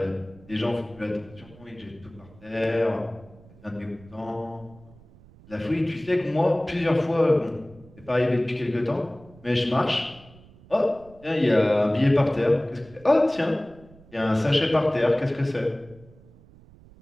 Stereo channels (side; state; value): right; noise; rumble, 24 dB below the sound